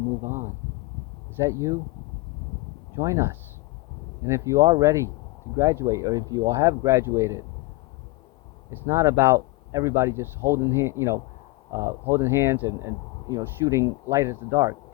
move on. Is that you? Join us. And if you are ready to graduate, or if you all have graduated, it's not about everybody just holding holding hands and shooting light at the dark.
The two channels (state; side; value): quieter; right; 22.3 dB